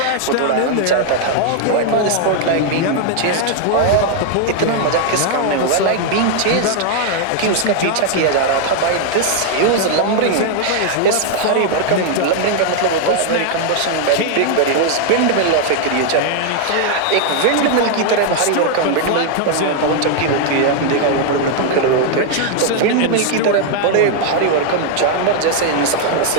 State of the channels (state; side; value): different; both; correlation 0.00